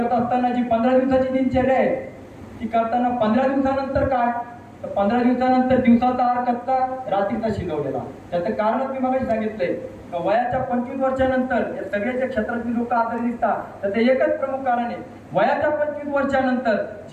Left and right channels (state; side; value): identical; both; correlation 1.00